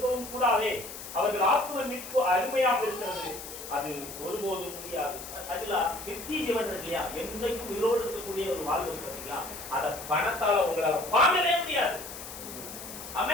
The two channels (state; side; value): noise; left; hiss, 11 dB below the sound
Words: கூடாதே. அவர்கள் ஆத்ம மீட்பு அருமையாக இருக்கிறது, அது ஒருபோதும் முடியாது. அதுல நித்திய ஜீவன் இல்லையா, என்றைக்கும் உயிரோடு இருக்கக்கூடிய ஒரு வாழ்வு பார்த்தீங்களா, அதை பணத்தால உங்களால வாங்கவே முடியாது.